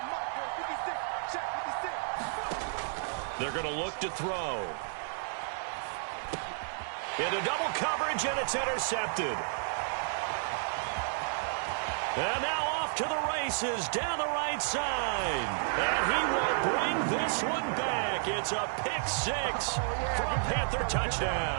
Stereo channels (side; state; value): left; silent; 57 dB below the other